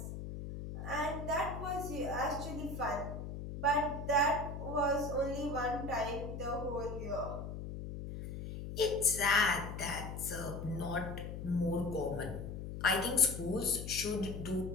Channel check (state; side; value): noise; left; hum, 7 dB below the sound